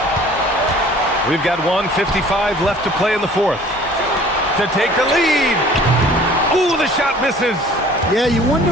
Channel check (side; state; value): both; normal; correlation 0.50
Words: We've got 1:55 left to play in the fourth. To take the lead. Ooh, the shot misses. Yeah, you wonder